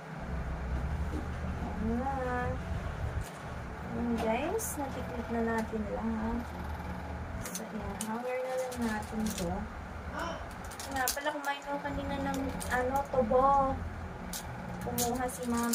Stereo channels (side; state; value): both; identical; correlation 1.00